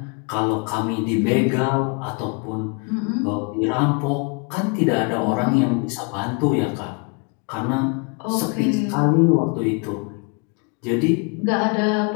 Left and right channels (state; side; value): quieter; right; 32.8 dB